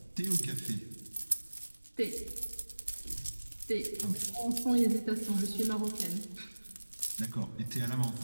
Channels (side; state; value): both; inverted; correlation -1.00